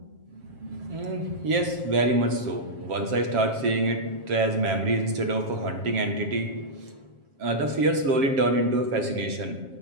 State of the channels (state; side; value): late; left; 7.4 ms